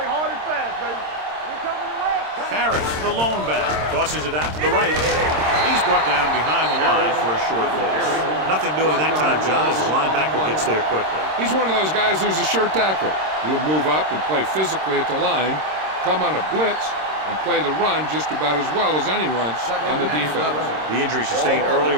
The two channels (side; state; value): left; late; 26 ms